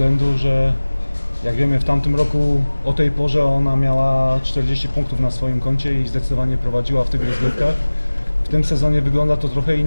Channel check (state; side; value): inverted; both; correlation -1.00